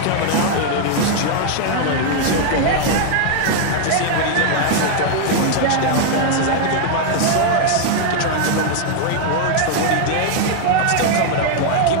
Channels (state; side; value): different; both; correlation 0.00